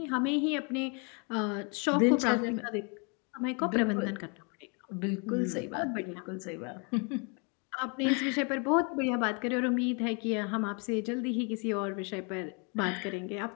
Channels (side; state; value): right; quieter; 34.9 dB